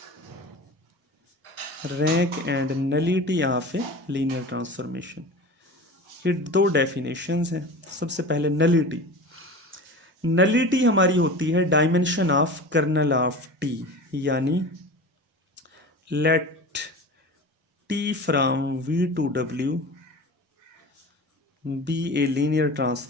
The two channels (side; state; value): both; normal; correlation 0.34